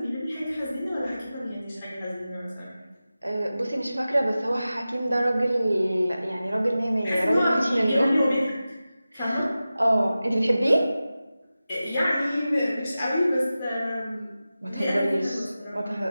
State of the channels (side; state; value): both; inverted; correlation -0.95